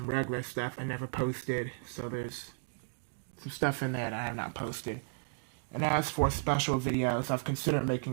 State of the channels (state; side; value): silent; left; digital silence